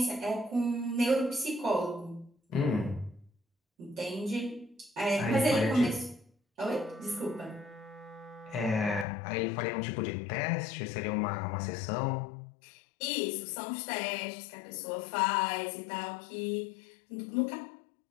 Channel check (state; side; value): drops out; right; at 9.1 s